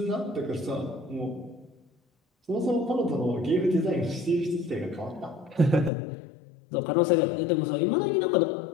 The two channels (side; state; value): right; drops out; at 5.9 s